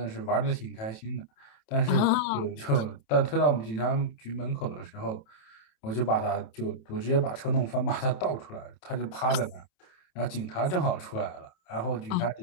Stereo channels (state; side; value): late; right; 27 ms